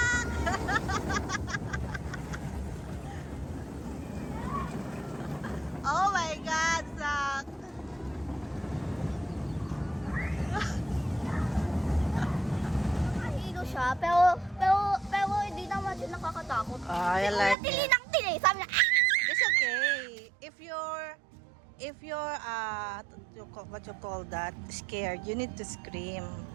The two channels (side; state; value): left; drops out; at 17.6 s